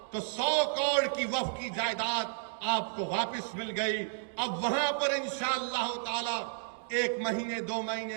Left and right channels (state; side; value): silent; left; digital silence